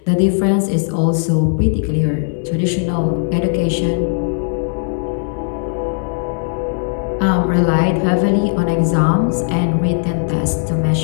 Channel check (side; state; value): right; silent; 68 dB below the other